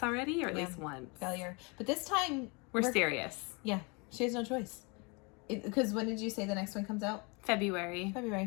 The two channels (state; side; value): quieter; right; 30.4 dB